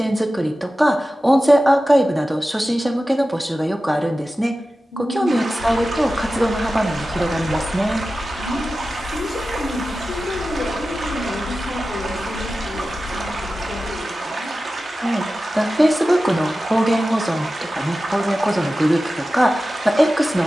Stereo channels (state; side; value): normal; both; correlation 0.94